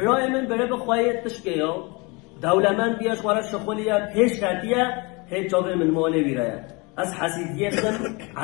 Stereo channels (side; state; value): right; quieter; 28.0 dB